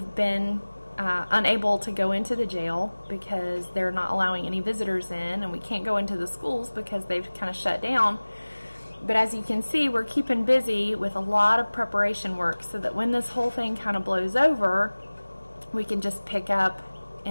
been unable to go into the jail because they're not allowing any visitors in, and we can't go into the schools because they've kind of shut down. But as you can see, we're keeping busy with a lot of preparation work so that when this whole thing kind of blows over, we can just pick up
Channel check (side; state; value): both; inverted; correlation -1.00